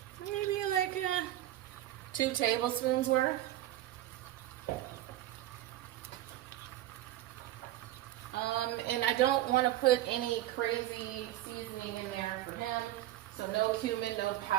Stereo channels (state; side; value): quieter; left; 14.3 dB